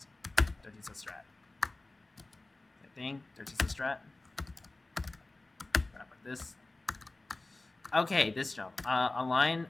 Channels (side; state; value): right; quieter; 3.0 dB